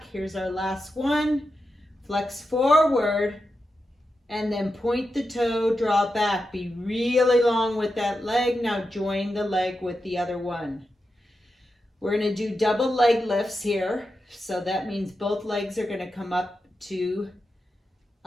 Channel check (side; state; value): both; normal; correlation 0.89